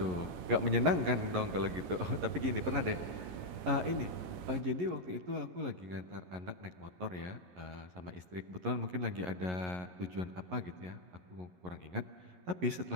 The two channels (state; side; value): late; left; 11 ms